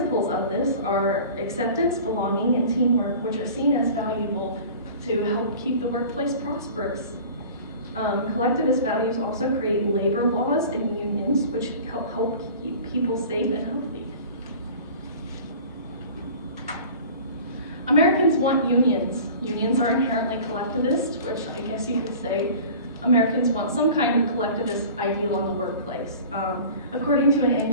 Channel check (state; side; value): inverted; both; correlation -0.41